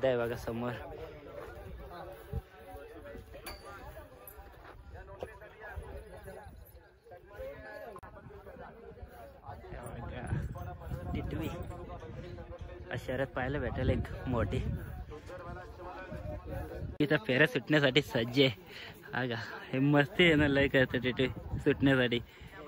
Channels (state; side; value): identical; both; correlation 1.00